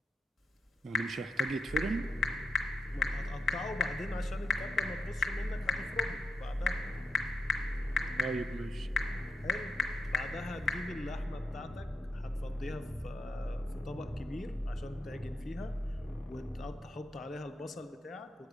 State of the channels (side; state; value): both; normal; correlation 0.85